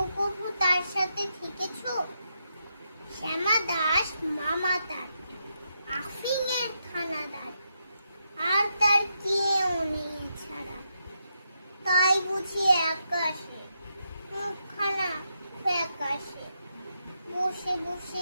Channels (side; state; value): both; inverted; correlation -0.82